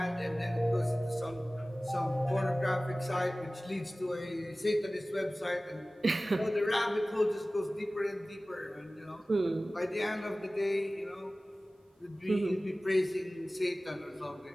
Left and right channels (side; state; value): both; normal; correlation 0.97